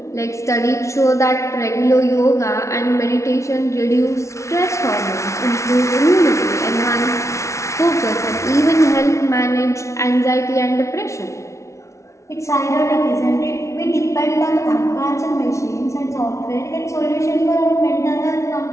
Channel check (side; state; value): right; late; 0.14 ms